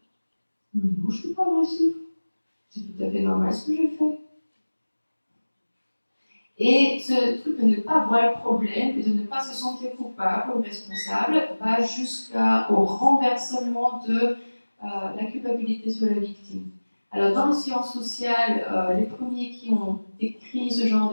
Mais moi, je ne suis pas agressif. C'est tout à fait normal ce que j'ai fait. Et ce truc de ne pas voir le problème et de ne pas se sentir coupable ou responsable va jusqu'au renversement de la culpabilité sur la victime. Alors, dans les sciences sociales, les premiers qui ont décrit ce genre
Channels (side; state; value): both; inverted; correlation -1.00